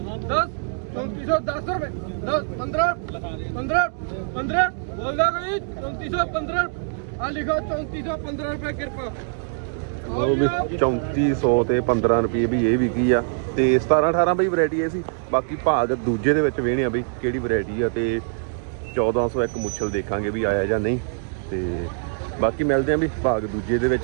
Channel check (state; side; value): silent; left; digital silence